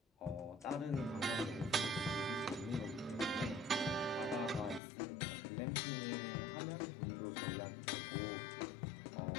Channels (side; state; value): right; drops out; at 4.8 s